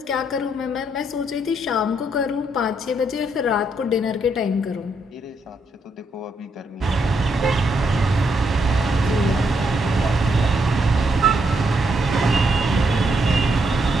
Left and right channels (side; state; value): both; normal; correlation 0.77